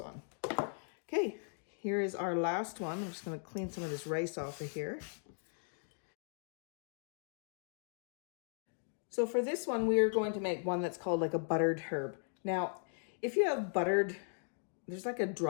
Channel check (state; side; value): silent; right; digital silence